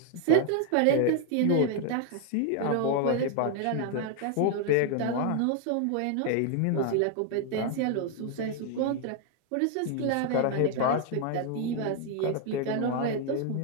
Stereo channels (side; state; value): both; different; correlation 0.00